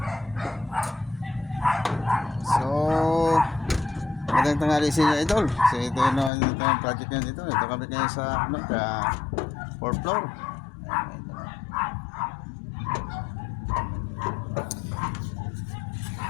So, magandang tanghali sa inyo, idol. So, ito yung project nyo dito. Ito kami kayo sa 4th floor. Ayan, idol.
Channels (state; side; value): drops out; right; at 6.3 s